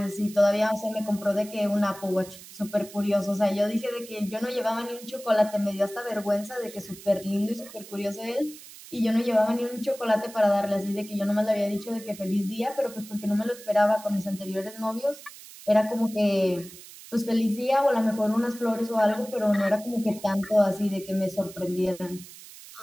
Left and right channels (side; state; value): right; noise; hiss, 17 dB below the sound